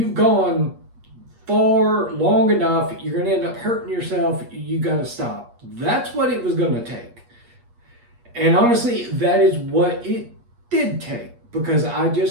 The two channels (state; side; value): late; left; 8.4 ms